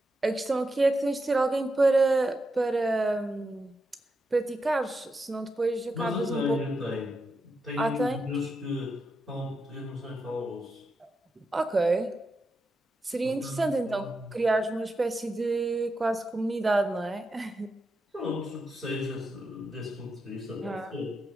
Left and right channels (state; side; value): normal; both; correlation 0.86